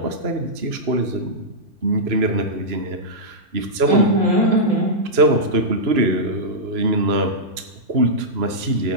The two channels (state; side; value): late; left; 3.0 ms